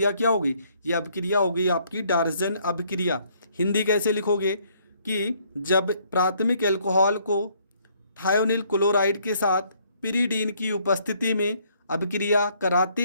क्या होगी, ये अभिक्रिया होगी आपकी डार्जन अभिक्रिया। हिंदी कैसे लिखोगे कि जब प्राथमिक एल्कोहल को थायोनिल क्लोराइड के साथ पिरीडीन की उपस्थिति में अभिक्रिया कराते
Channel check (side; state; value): both; inverted; correlation -0.66